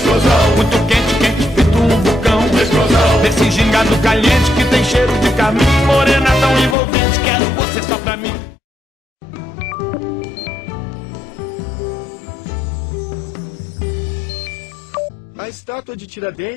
Muito quente, quente, feito um vulcão. Explosão. Desse gingado caliente que tem cheiro de carmim. Morena tão envolvente, quero você só pra mim. A estátua de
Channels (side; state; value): right; drops out; at 6.8 s